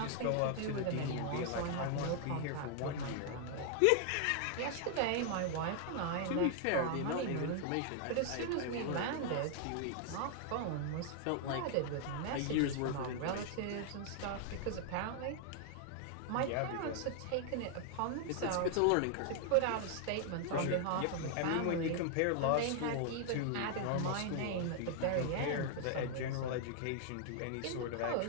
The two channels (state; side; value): different; both; correlation 0.00